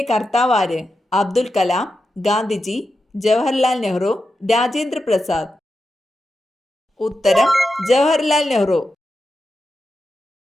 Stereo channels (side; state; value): both; normal; correlation 0.89